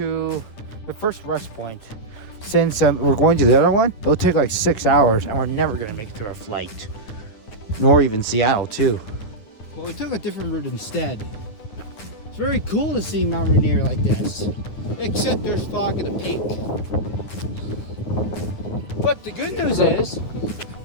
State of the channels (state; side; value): late; right; 9.7 ms